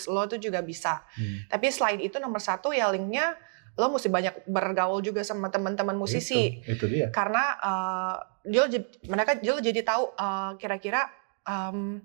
lo itu juga bisa. Tapi selain itu nomor satu ya linknya, lo mesti banyak bergaul juga sama teman-teman musisi. Itu dia. Karena dia jadi tahu kira-kira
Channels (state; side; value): silent; left; 59 dB below the other